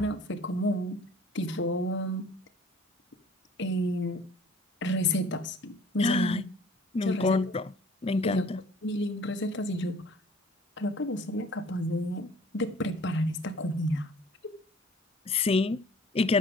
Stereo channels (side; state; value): both; normal; correlation 0.52